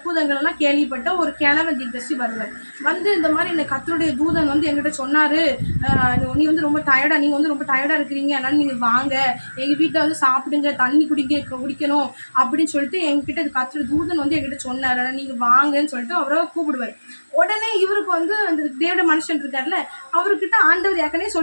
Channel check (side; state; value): both; inverted; correlation -1.00